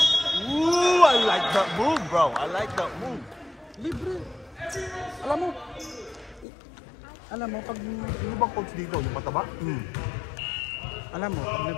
Ooh, I like that move, bro. I like that move. Libre. Alam mo, pag... Sino bang coach dito? Yung mataba? Alam mo, pag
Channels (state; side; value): drops out; right; at 6.5 s